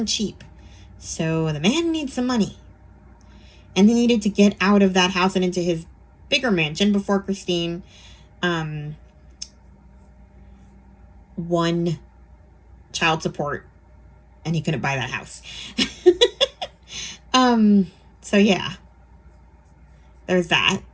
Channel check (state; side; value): identical; both; correlation 1.00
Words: cheap. So the man needs some money. And he needed to get out of that house and into his bigger mansion before Christine won child support, and he couldn't buy that house. So yeah, there's that.